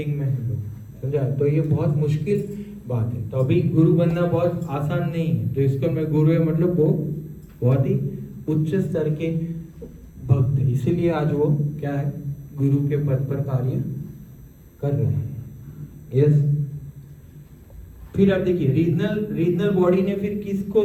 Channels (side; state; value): both; identical; correlation 1.00